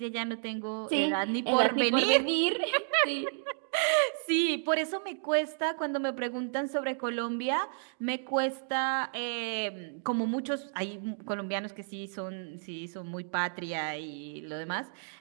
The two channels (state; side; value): silent; left; digital silence